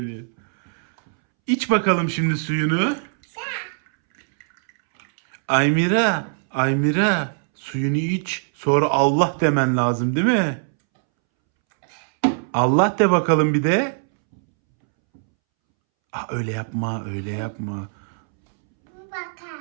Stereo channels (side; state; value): left; silent; 64 dB below the other